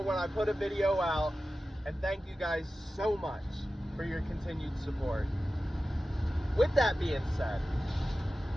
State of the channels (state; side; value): normal; both; correlation 0.94